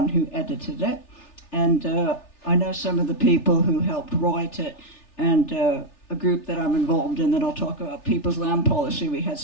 who edited it, and I know some of the people who helped write it, and a group that I'm involved in that I'll talk about, People's Land Policy. We had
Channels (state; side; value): late; right; 3.4 ms